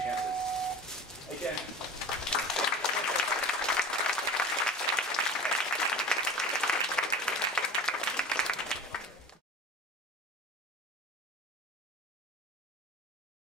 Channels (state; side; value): normal; both; correlation 0.36